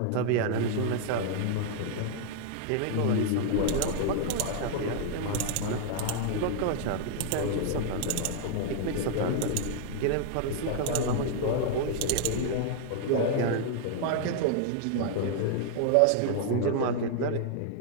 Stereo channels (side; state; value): both; different; correlation 0.00